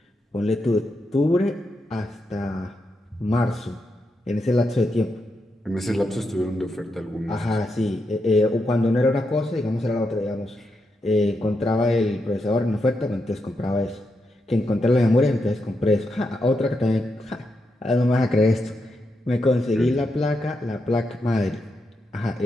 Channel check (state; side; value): normal; both; correlation 0.84